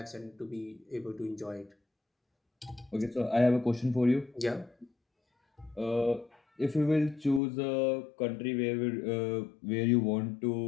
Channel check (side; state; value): right; drops out; at 7.4 s